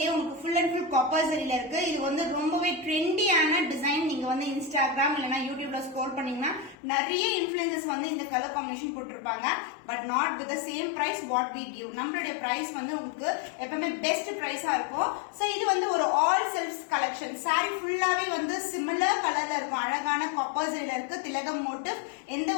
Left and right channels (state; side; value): drops out; right; at 6.8 s